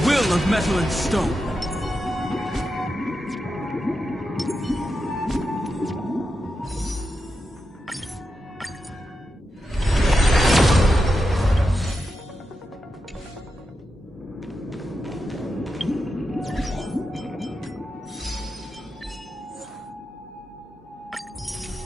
of metal and stone.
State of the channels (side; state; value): both; normal; correlation 0.88